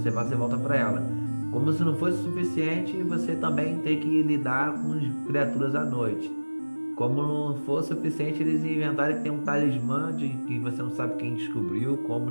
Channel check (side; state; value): both; inverted; correlation -1.00